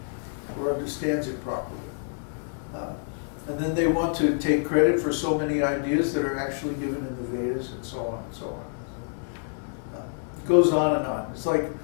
or understands it properly. And then they want to take credit for so many ideas that are actually given in the Vedas and so on and so on. It goes on and on. It's like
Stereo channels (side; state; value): right; silent; digital silence